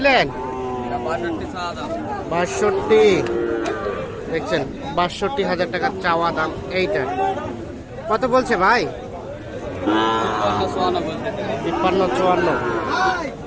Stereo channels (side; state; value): both; identical; correlation 1.00